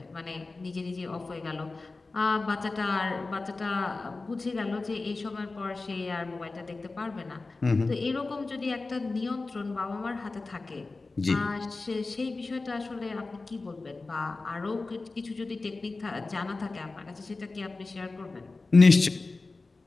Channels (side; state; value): right; quieter; 3.6 dB